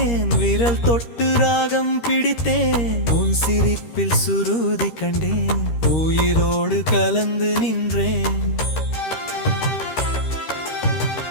விரல் தொட்டு ராகம் பிடித்தேன், உன் சிரிப்பில் சுருதி கண்டேன், உயிரோடு கலந்து நின்றேன்.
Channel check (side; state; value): right; late; 13 ms